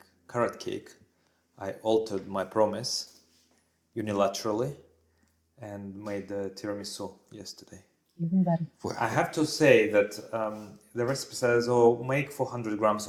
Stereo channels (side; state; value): both; identical; correlation 1.00